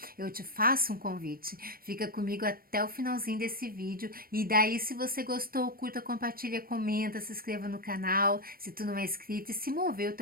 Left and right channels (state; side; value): late; left; 0.43 ms